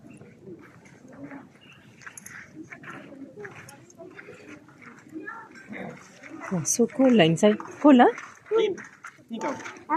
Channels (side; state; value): both; identical; correlation 1.00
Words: Oh, so cold inside. Cold, huh? Air